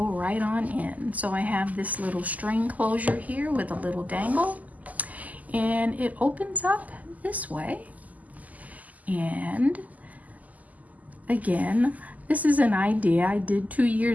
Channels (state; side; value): late; left; 0.078 ms